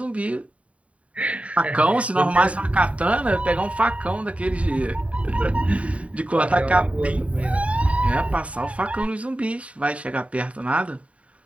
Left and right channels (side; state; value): left; late; 0.065 ms